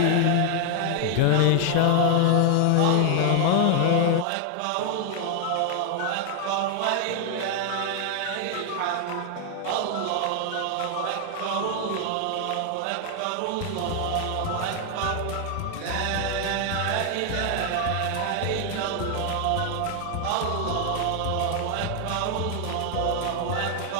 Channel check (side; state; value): both; different; correlation 0.00